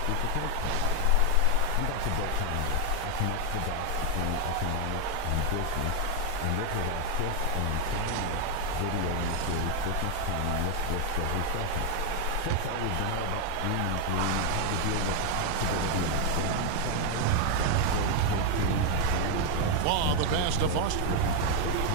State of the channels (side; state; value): both; different; correlation 0.01